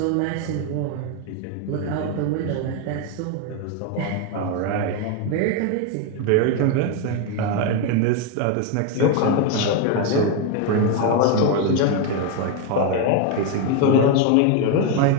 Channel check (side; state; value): both; different; correlation 0.01